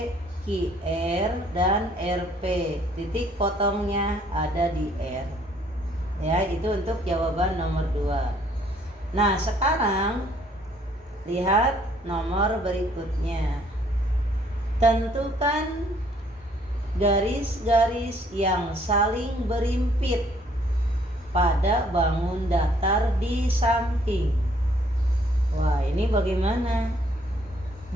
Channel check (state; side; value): normal; both; correlation 0.63